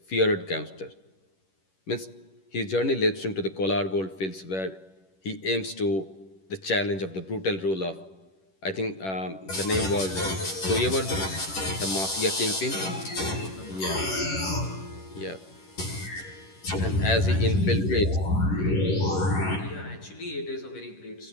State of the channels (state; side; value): late; right; 11 ms